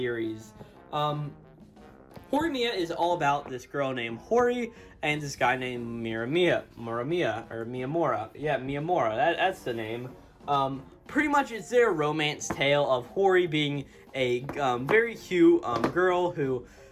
Horimiya is all about this girl named Hori and this guy named Miyamura. Yeah, Miyamura. That's the name. Pretty much it's their romance tale of Hori being a very cute girl who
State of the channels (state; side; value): identical; both; correlation 1.00